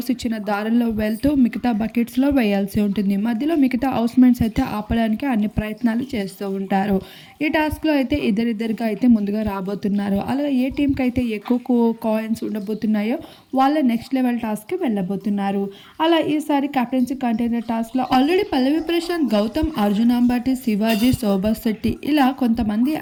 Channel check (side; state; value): both; identical; correlation 1.00